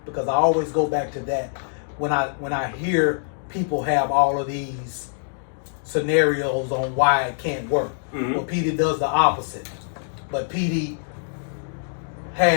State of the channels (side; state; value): right; silent; digital silence